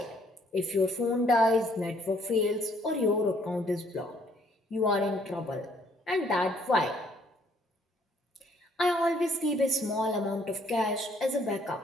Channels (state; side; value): normal; both; correlation 0.65